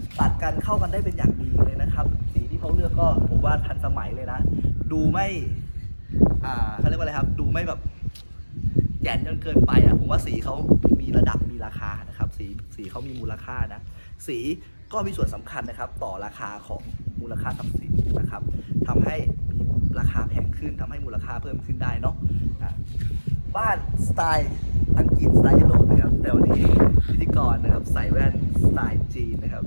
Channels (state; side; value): inverted; both; correlation -1.00